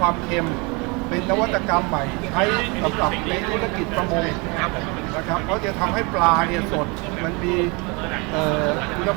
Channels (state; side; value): quieter; left; 28.8 dB